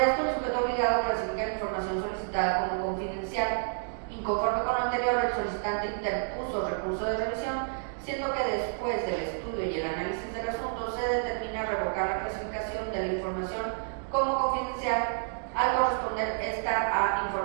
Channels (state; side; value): silent; left; digital silence